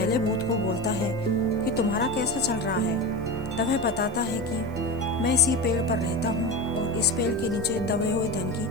भूत को बोलता है कि तुम्हारा कैसा चल रहा है। तब वह बताता है कि मैं इसी पेड़ पर रहता हूँ और इस पेड़ के नीचे दबे हुए धन की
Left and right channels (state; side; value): noise; right; hiss, 29 dB below the sound